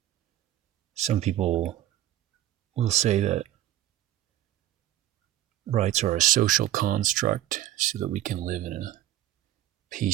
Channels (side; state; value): left; quieter; 13.3 dB